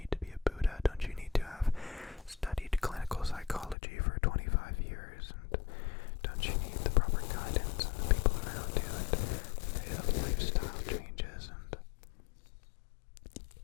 to be a Buddha? Don't you need to have studied clinical psychology for 25 years? And don't you need the proper guidance and the people around you and the lifestyle changes? And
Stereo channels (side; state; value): right; drops out; at 3.8 s